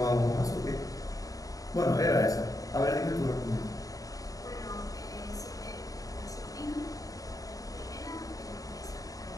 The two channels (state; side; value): late; right; 0.17 ms